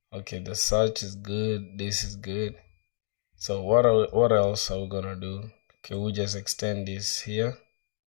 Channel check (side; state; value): right; silent; digital silence